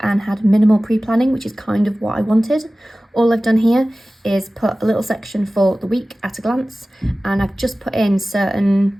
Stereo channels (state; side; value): normal; both; correlation 0.97